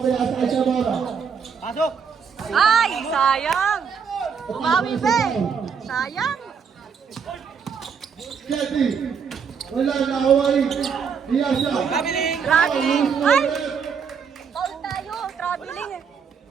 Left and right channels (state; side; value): quieter; left; 6.4 dB